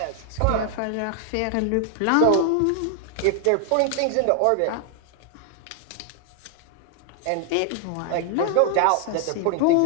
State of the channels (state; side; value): different; both; correlation 0.00